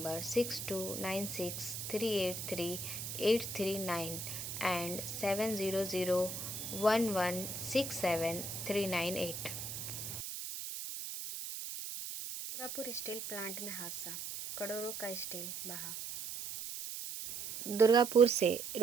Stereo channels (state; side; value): noise; right; hiss, 6 dB below the sound